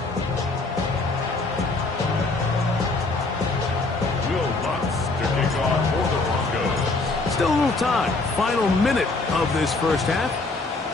Still a little time. Final minute of this first half.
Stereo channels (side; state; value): right; quieter; 3.4 dB